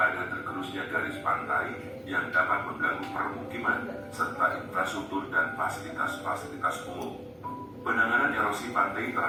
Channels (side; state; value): both; identical; correlation 1.00